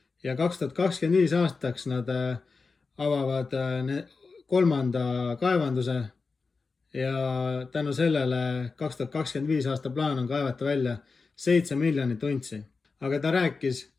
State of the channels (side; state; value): right; quieter; 4.4 dB